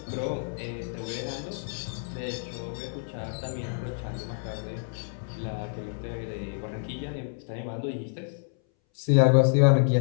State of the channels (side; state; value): right; silent; 59 dB below the other